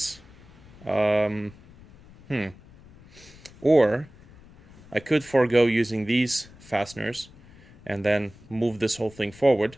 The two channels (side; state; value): left; noise; rumble, 23 dB below the sound